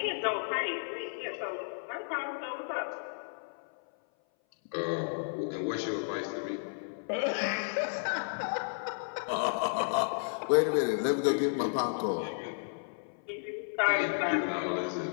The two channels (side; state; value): right; silent; 56 dB below the other